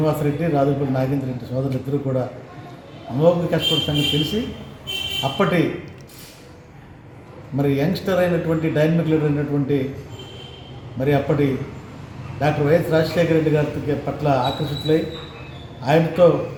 రాజులపల్లి నాగేంద్ర రెడ్డి సోదరులు ఇద్దరు కూడా అమోఘంగా కష్టపడే సంగతి తెలిసి అప్పటి మరి యంగ్స్టర్ అయినటువంటి డైనమిక్ లీడర్ అయినటువంటి మరి అప్పటి డాక్టర్ వైఎస్ రాజశేఖర రెడ్డి గారి పట్ల ఆకర్షితులై ఆయనతో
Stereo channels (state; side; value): identical; both; correlation 1.00